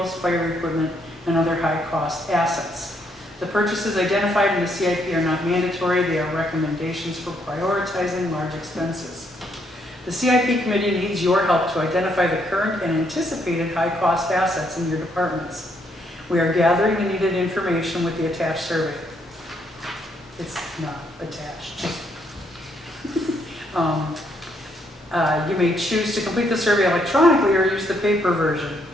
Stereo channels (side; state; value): both; normal; correlation 0.73